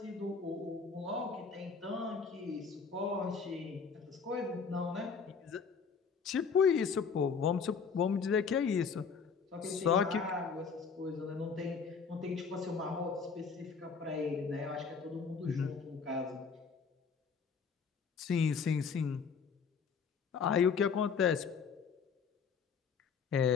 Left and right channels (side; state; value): right; quieter; 5.8 dB